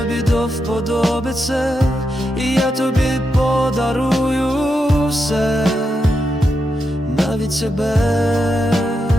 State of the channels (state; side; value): normal; both; correlation 0.85